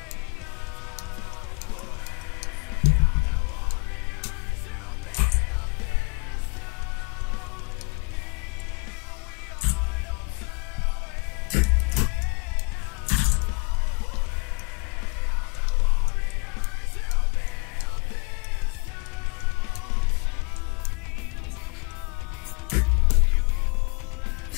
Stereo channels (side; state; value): right; quieter; 31.9 dB